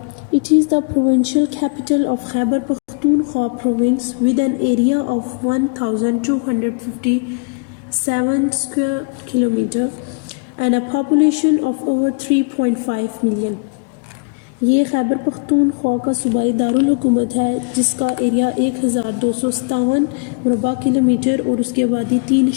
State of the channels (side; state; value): right; quieter; 34.9 dB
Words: it is the provincial capital of Khyber Pakhtunkhwa province with N area of 1257 square kilometre and a population of over 3.5 million. یہ خیبر پختونخوا کا صوبائی دارالحکومت ہے جس کا ایریا 1257 مربع کلومیٹر اور اس کی آبادی